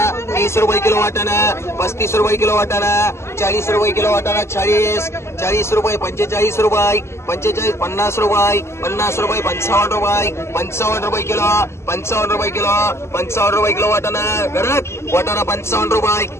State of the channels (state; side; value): late; right; 0.13 ms